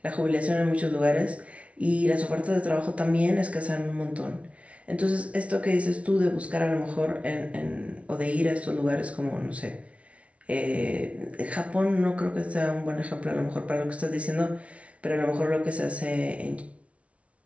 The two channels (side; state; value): left; late; 0.063 ms